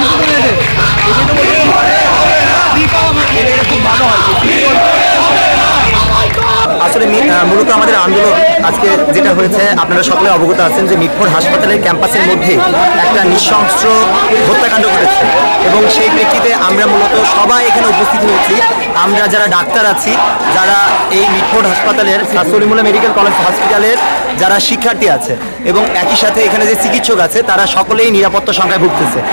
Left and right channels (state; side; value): inverted; both; correlation -1.00